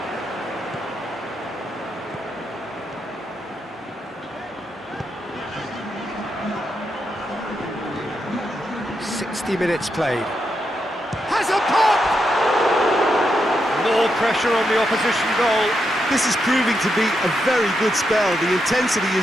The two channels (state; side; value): normal; both; correlation 0.83